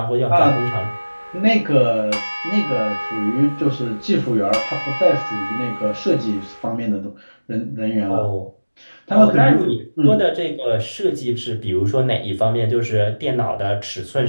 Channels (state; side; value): inverted; both; correlation -1.00